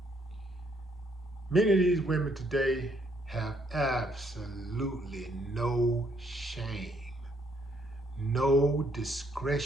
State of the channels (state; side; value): normal; both; correlation 0.70